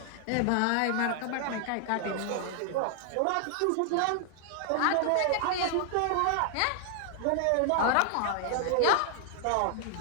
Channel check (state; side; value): different; both; correlation 0.00